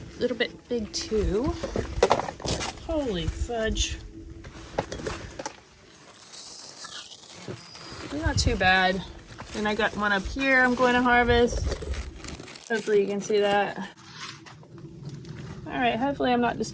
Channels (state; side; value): identical; both; correlation 1.00